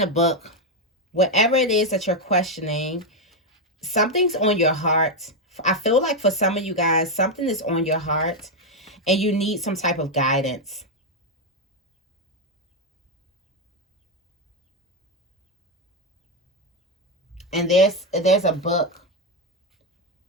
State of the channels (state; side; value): normal; both; correlation 0.05